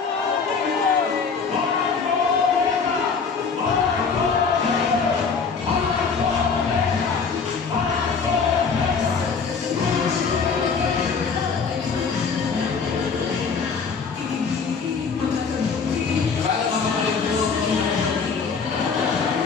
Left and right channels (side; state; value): right; quieter; 5.4 dB